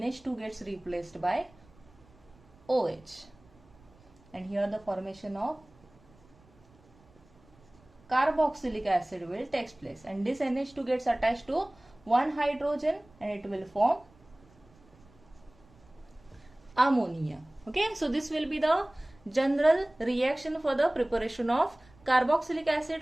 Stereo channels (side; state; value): right; noise; rumble, 28 dB below the sound